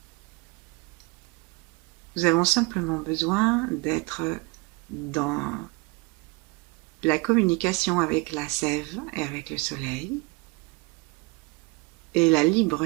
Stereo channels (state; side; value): quieter; left; 26.2 dB